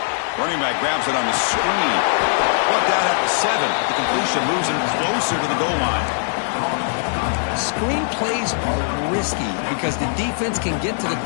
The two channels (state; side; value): silent; right; digital silence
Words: Running back grabs it on the screen. Brought down at the 7. The completion moves him closer to the goal line. Screen plays are risky because the defense can get to the